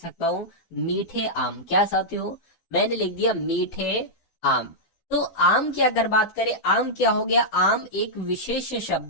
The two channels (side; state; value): right; late; 12 ms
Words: हूँ मीठे आम। क्या साथियों? मैंने लिख दिया मीठे आम। तो आम की अगर बात करें, आम क्या हो गया? आम एक विशेष